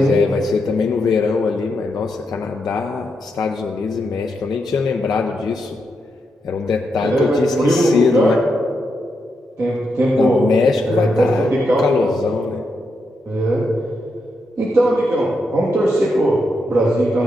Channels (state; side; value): normal; both; correlation 0.83